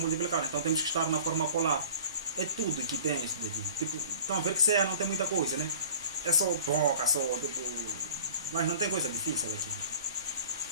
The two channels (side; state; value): both; inverted; correlation -0.45